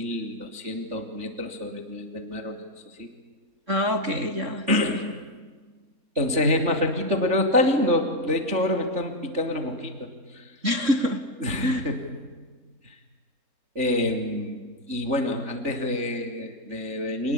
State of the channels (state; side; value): late; left; 3.5 ms